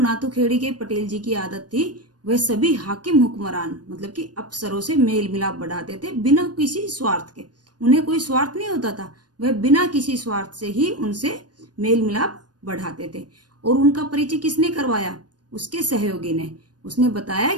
के पटेल जी की आदत थी वह सभी हाकिम हुक्मरान मतलब कि अफसरों से मेल मिलाप बढ़ाते थे बिना किसी स्वार्थ के। उन्हें कोई स्वार्थ नहीं होता था, वह बिना किसी स्वार्थ से ही उनसे मेल मिलाप बढ़ाते थे। और उनका परिचय किसने करवाया? उसके सहयोगी ने। उसने बताया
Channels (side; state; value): left; late; 0.69 ms